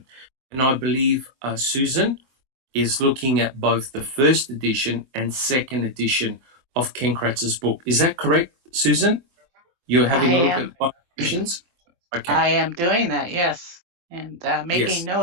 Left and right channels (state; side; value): late; left; 23 ms